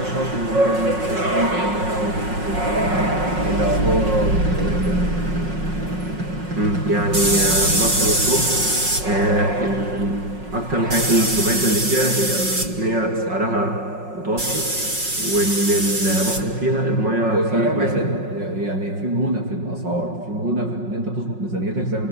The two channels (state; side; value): late; left; 5.5 ms